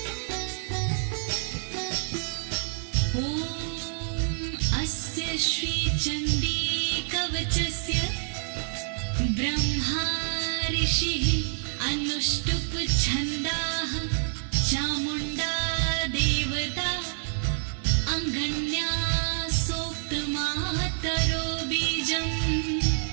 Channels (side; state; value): left; silent; digital silence